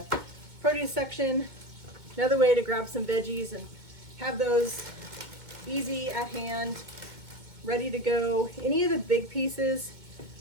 produce section. Another way to grab some veggies and have those easy at hand, ready to go. Any of the big pieces,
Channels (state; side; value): late; left; 2.2 ms